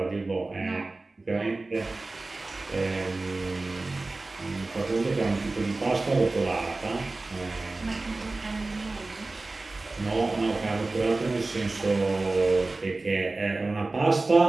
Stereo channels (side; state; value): left; quieter; 3.3 dB